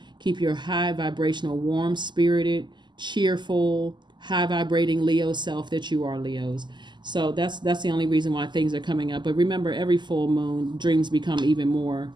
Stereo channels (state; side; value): late; left; 0.21 ms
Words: Keep your high vibrational, warm spirited, cheerful, high vibrating Leo self that you are, Leos. So that's the only reason why things are coming up. But remember, every full moon, dreams become even more